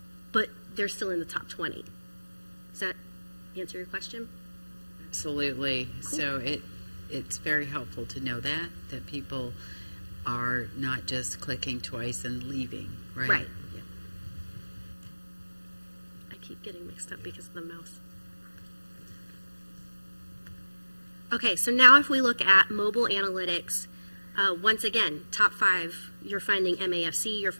but they're still in the top 20. Does that answer your question? Absolutely. Cool. So it's very helpful to know that people are not just clicking twice and leaving, right? Right. Yeah. I keep getting mixed up because of the mouse. Okay, so now if we look at mobile analytics, once again, top 5, you're finding MAFC, you're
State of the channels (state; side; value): inverted; both; correlation -1.00